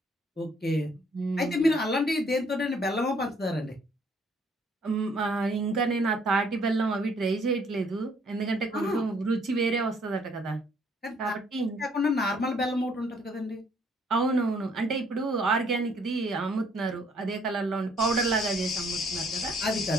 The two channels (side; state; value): both; normal; correlation 0.64